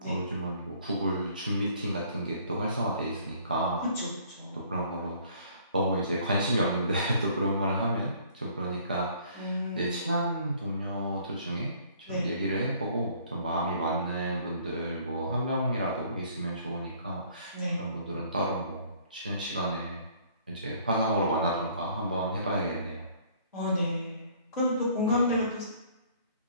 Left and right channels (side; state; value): both; inverted; correlation -0.58